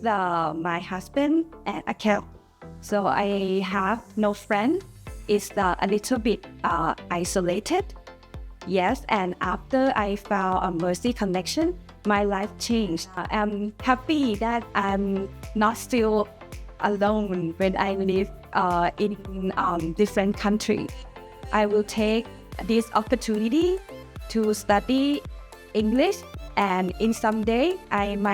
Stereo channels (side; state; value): both; identical; correlation 1.00